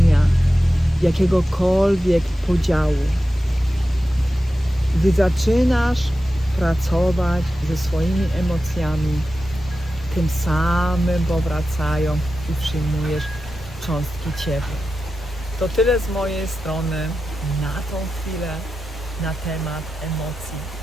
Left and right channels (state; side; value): normal; both; correlation 0.92